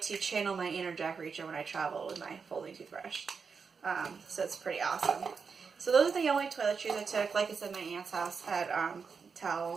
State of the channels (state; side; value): quieter; left; 5.5 dB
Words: to channel my inner Jack Reacher when I travel with my folding toothbrush. So it's pretty awesome. So those are the only toiletries I took. Like I said, my aunt's house had